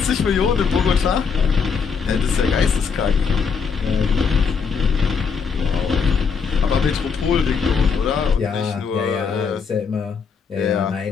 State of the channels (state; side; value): quieter; right; 5.8 dB